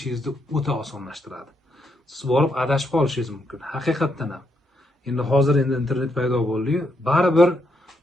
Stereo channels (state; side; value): normal; both; correlation 0.78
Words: o'ta osonlashtiradi. Siz borib adashib qolishingiz mumkin. Haqiqatdan ham. Hozir internet paydo bo'ldi-yu, baribir